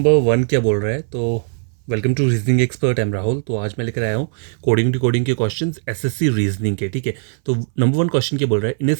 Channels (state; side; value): silent; left; 62 dB below the other